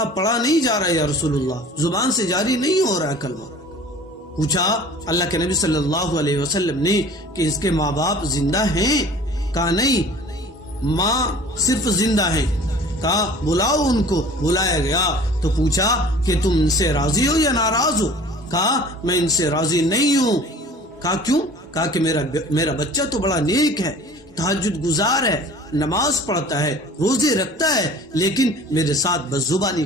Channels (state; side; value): normal; both; correlation 0.46